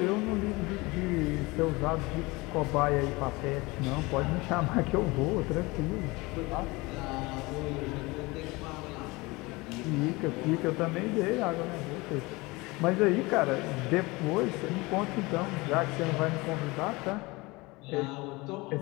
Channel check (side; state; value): right; quieter; 23.5 dB